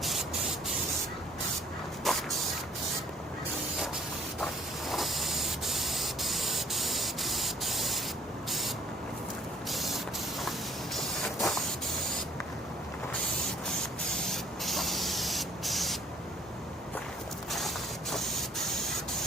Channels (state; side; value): normal; both; correlation 0.59